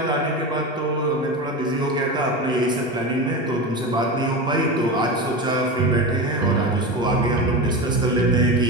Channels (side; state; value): both; normal; correlation 0.23